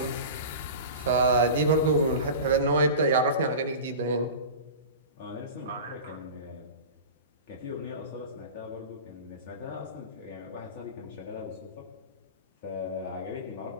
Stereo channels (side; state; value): both; inverted; correlation -0.32